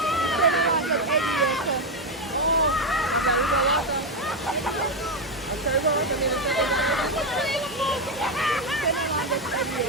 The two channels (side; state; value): both; normal; correlation 0.07